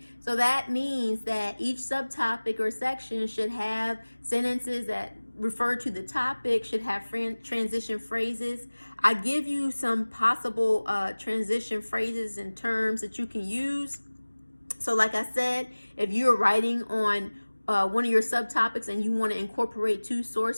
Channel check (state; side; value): inverted; both; correlation -1.00